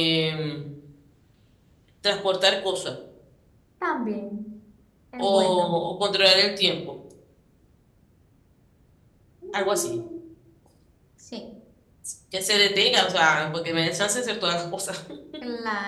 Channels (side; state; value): both; identical; correlation 1.00